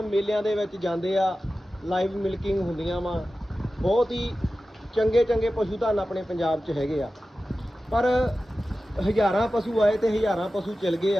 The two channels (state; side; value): normal; both; correlation 0.94